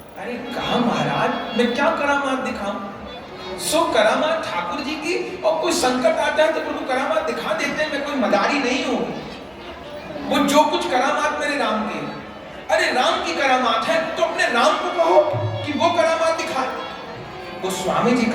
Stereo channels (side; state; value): both; identical; correlation 1.00